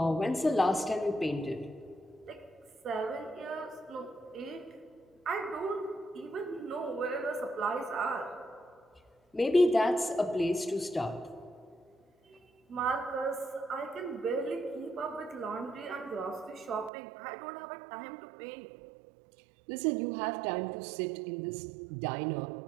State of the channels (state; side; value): drops out; left; at 16.9 s